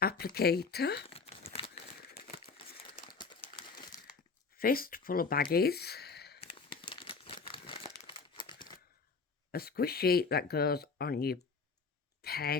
applicator, fist full of baggies, a squish sheet that goes on your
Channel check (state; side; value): quieter; right; 4.8 dB